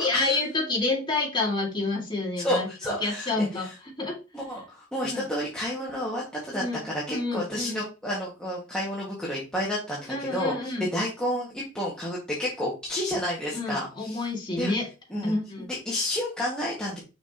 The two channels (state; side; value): normal; both; correlation 0.38